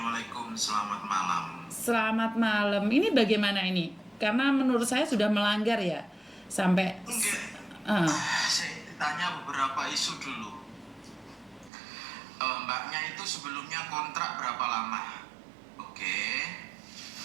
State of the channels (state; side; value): drops out; left; at 11.7 s